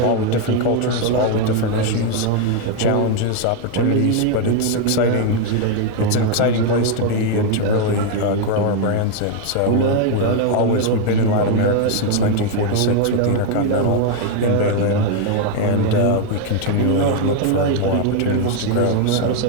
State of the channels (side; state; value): both; different; correlation 0.01